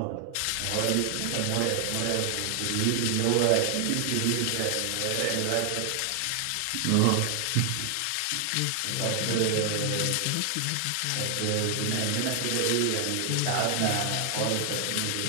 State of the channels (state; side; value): different; both; correlation 0.00